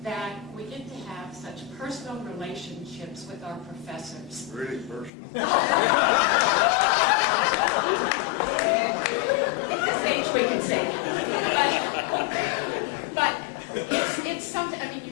that we get to have such personal relationships with our professors. Really personal. At this age, we can say that. But it's something, I mean,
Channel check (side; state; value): right; drops out; at 5.1 s